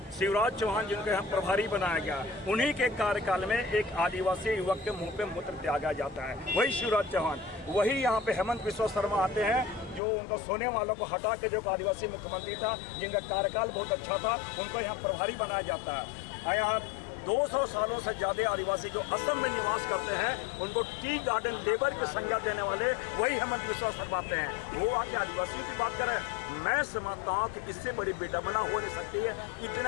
शिवराज चौहान जिनको यहाँ प्रभारी बनाया गया, उन्हीं के कार्यकाल में एक आदिवासी युवक के मुंह पे मूत्र त्यागा जाता है, वही शिवराज चौहान। वही यहाँ पे हेमंत बिस्वा शर्मा आते हैं, जो उनको सोने वालों को हटा के जो आदिवासी मुख्यमंत्री था, जिनका कार्यकाल बहुत अच्छा था, उनको यहाँ प्रभारी बनाया जाता है। यहाँ 200 सालों से ज्यादा आदिवासी जो असम में निवास करते हैं, उनको टी गार्डन लेबर की संज्ञा देने वाले वही हेमंत बिस्वा शर्मा आते हैं। वो आके आदिवासियों की बात करें, मैं समझता हूँ कि इससे बड़ी बेदमना हो नहीं सकती है।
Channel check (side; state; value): right; drops out; at 10.0 s